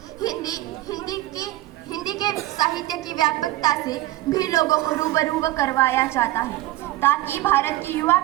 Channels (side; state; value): left; quieter; 16.7 dB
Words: हिंदी के साहित्य की व्यापकता से भी लोगों को रूबरू करवाया जाता है ताकि भारत की युवा